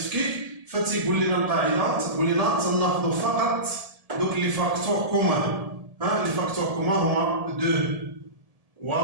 فتيقول لنا القاعدة تقول لنا تناخذوا فقط دوك لي فاكتور كومان. لي فاكتور كومان هما 2 و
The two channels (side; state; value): left; late; 1.7 ms